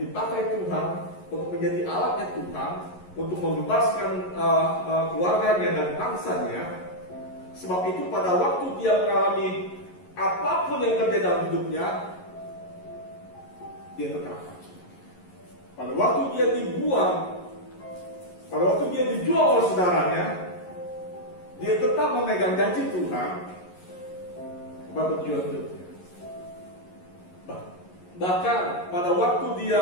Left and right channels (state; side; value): late; right; 11 ms